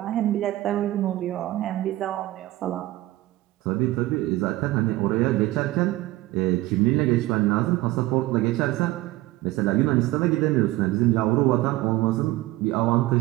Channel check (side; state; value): left; quieter; 17.5 dB